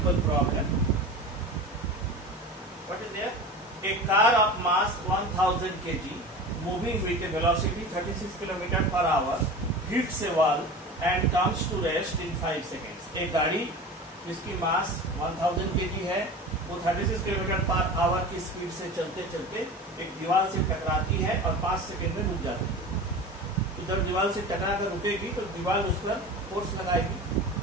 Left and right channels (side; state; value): both; normal; correlation 0.33